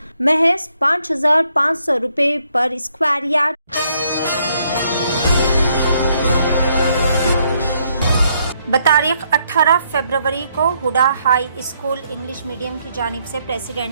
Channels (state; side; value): inverted; both; correlation -0.73